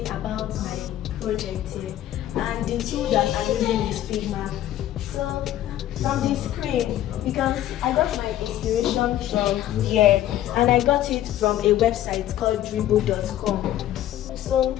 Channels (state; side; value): quieter; right; 12.8 dB